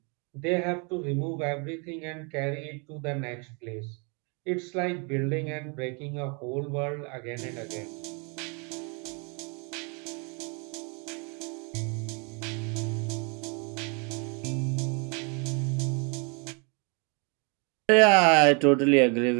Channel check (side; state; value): left; quieter; 34.4 dB